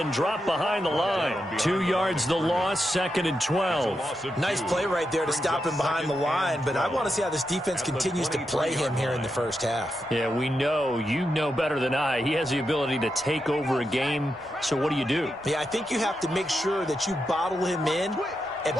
dropped behind the line. 2 yards the loss, 2nd and 12. Nice play right there to stop him behind the line, but I want to see how this defense continues to play him here in the first half. Yeah, we know, you know better than I, he has the ability to take over a game, so what do? Yeah, I think you have to make sure that you bottle him in at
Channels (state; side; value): normal; both; correlation 0.86